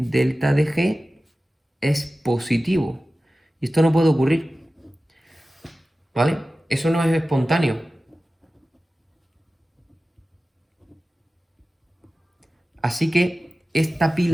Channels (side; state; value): both; normal; correlation 0.95